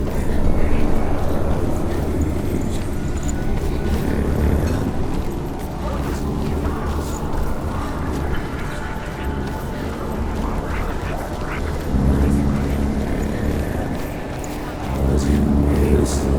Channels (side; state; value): both; identical; correlation 1.00